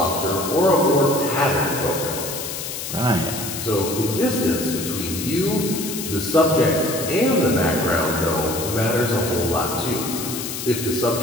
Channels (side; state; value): left; noise; hiss, 6 dB below the sound